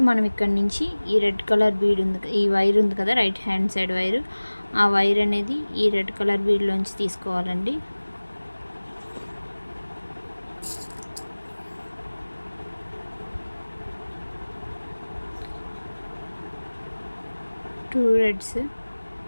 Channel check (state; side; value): inverted; both; correlation -1.00